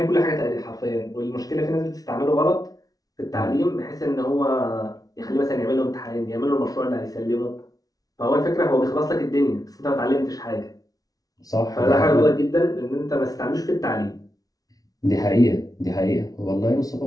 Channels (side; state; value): right; late; 0.18 ms